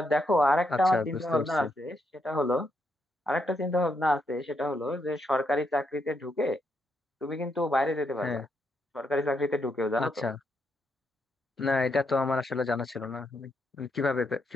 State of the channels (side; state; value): both; normal; correlation 0.79